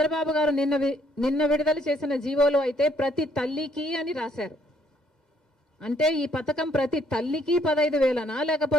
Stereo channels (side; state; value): right; late; 2.1 ms